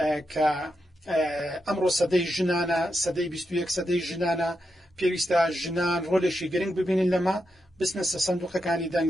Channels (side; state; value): both; normal; correlation 0.86